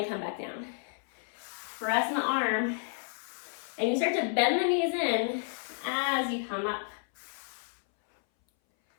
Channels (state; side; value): silent; right; 57 dB below the other